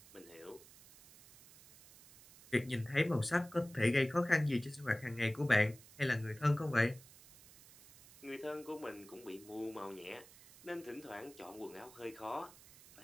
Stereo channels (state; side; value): noise; right; hiss, 21 dB below the sound